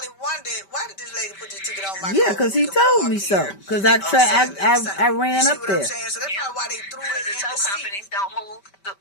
wondered, why did this lady put this ticket on my car? Yeah, because he told me so. Because I ran up there. So that's probably why they threw it in the tow seat. companies don't move.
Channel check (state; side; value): late; right; 5.1 ms